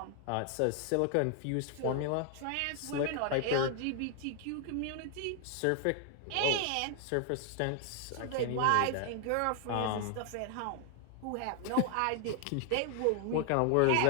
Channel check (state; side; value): different; both; correlation 0.00